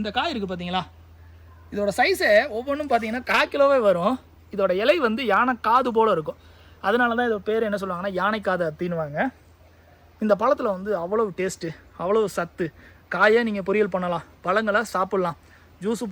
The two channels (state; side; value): identical; both; correlation 1.00